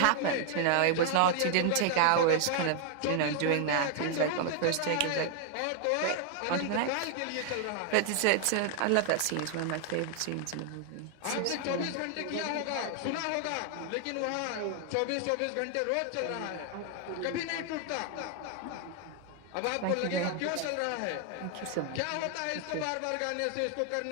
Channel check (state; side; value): different; both; correlation 0.00